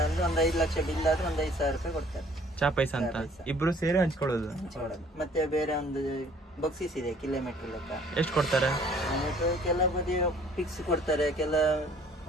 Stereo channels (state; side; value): normal; both; correlation 0.56